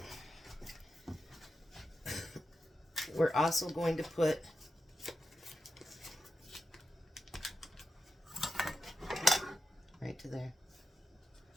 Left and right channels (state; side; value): normal; both; correlation 0.90